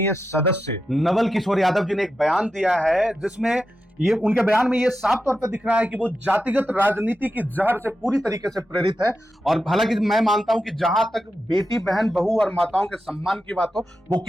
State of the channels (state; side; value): normal; both; correlation 0.89